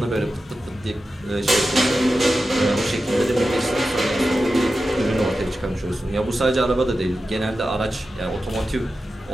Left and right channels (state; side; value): normal; both; correlation 0.92